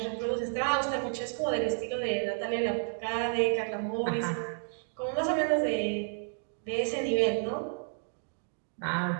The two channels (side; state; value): left; silent; 57 dB below the other